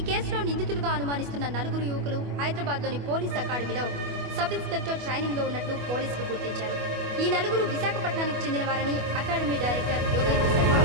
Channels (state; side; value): late; left; 25 ms